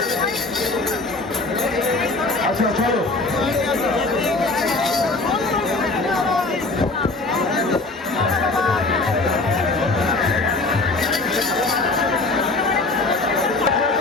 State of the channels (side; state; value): right; quieter; 3.4 dB